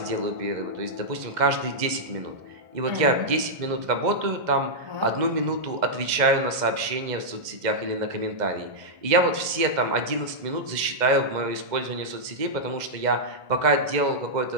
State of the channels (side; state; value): left; late; 2.0 ms